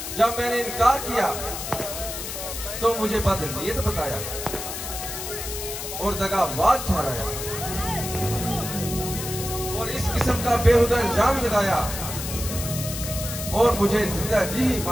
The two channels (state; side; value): noise; left; hiss, 7 dB below the sound